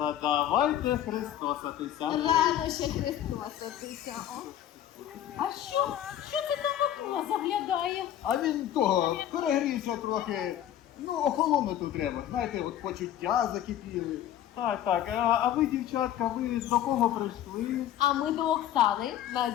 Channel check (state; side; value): quieter; right; 11.4 dB